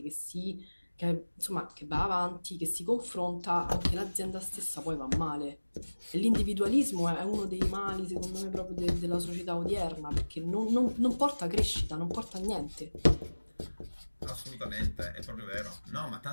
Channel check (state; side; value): inverted; both; correlation -1.00